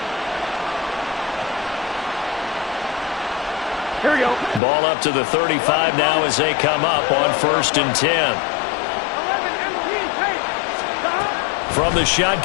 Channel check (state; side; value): drops out; right; at 4.6 s